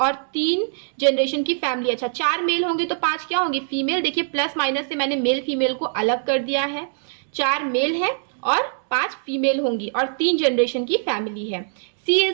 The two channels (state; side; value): silent; left; digital silence